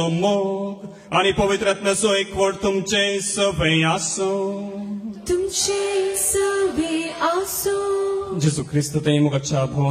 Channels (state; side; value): identical; both; correlation 1.00